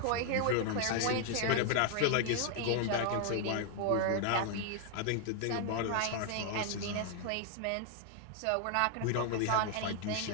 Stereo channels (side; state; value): both; different; correlation 0.00